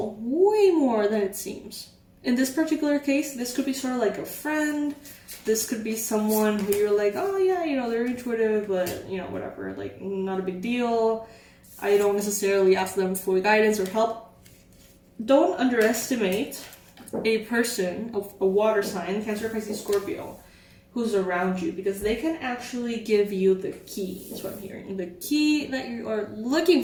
way more than it seems. In this particular case, this could be sort of like a friend. This could be someone who you're like, oh yeah, you know, they're intuitive, but you know, whatever, like not a big deal. I don't necessarily ask them for guidance or help. Don't underestimate a person, a water sign, Cancer, Pisces, Scorpio, who's around you, because they can actually give you the key. That's what I'm hearing. The key that you are looking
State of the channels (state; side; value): identical; both; correlation 1.00